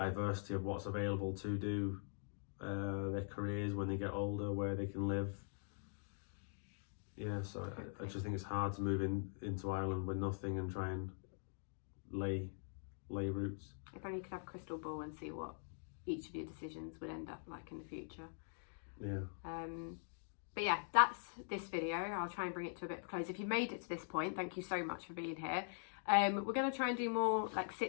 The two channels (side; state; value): right; silent; digital silence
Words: of what's available to do their careers when they get older, where they can live. Yeah, so I just think it's hard to move into Ireland with nothing and try and lay roots. If only you could have a crystal ball and see what each of your decisions would end up like in the future. Yeah. But yeah, that's this video. I'll try and bring it to a bit of a close. If you've made it to this point, thank you so much for being here. We're going to try and do more like